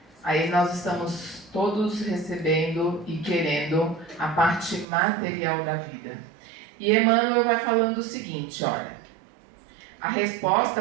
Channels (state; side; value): drops out; left; at 4.9 s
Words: Aí nós estamos todos recebendo e querendo a parte material da vida. E Emmanuel vai falando o seguinte, olha: a